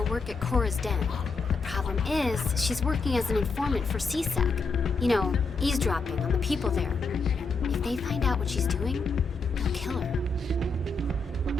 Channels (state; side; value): quieter; right; 4.0 dB